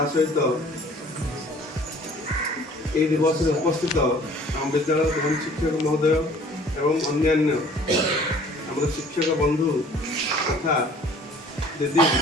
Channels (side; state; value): both; normal; correlation 0.52